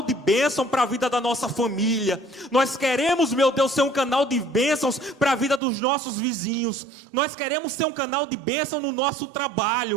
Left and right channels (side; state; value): left; drops out; at 5.6 s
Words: de bênção para a vida da nossa família. Nós queremos, meu Deus, ser um canal de bênçãos para a vida dos nossos vizinhos. Nós queremos ser um canal de bênção no nosso